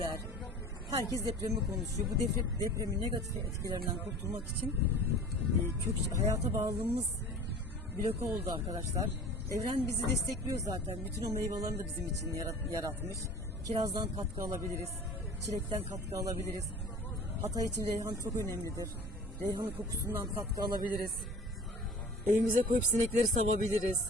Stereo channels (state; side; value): normal; both; correlation 0.42